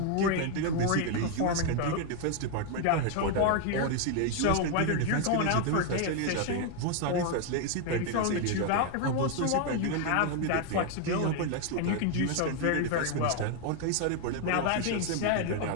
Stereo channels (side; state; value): both; different; correlation 0.01